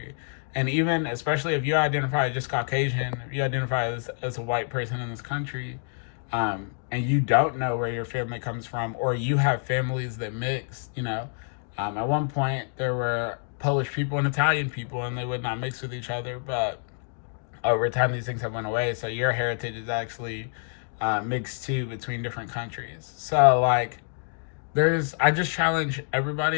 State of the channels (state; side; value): silent; right; digital silence